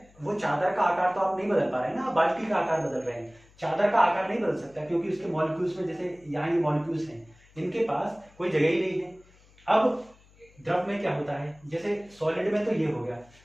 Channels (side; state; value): left; noise; hum, 28 dB below the sound